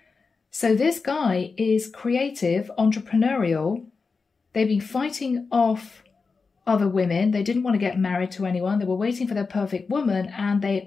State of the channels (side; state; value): right; quieter; 4.6 dB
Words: So this guy is creative, entrepreneurial. They've been fighting off other women. They didn't want to get married to anyone. They were waiting for their perfect woman, and they